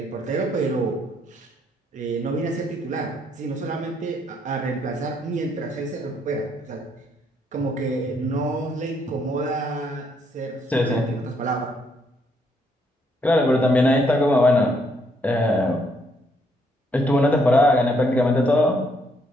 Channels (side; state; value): both; normal; correlation 0.71